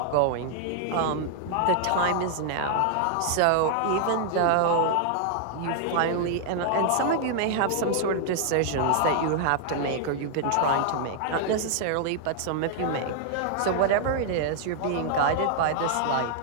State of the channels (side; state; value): both; different; correlation -0.01